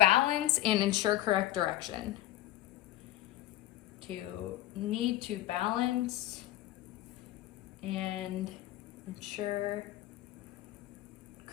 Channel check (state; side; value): quieter; right; 15.3 dB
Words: and ensure correct direction. Need to balance and ensure